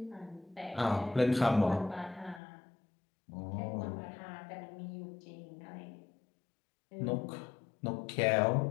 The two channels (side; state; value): right; drops out; at 2.4 s